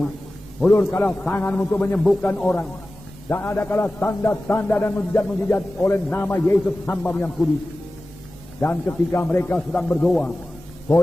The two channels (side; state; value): both; normal; correlation 0.95